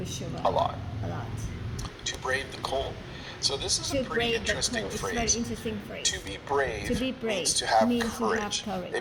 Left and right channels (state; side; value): identical; both; correlation 1.00